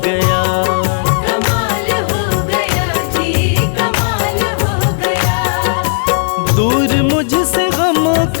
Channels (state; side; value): silent; right; digital silence